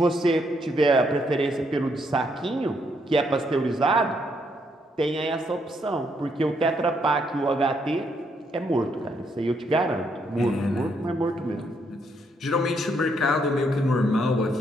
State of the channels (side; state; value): both; normal; correlation 0.74